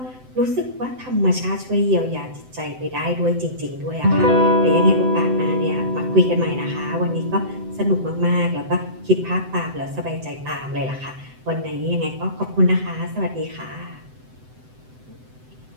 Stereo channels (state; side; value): late; left; 7.9 ms